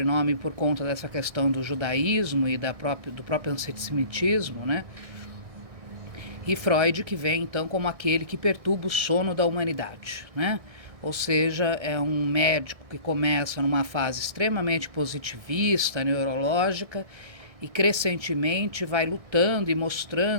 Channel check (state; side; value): late; left; 1.6 ms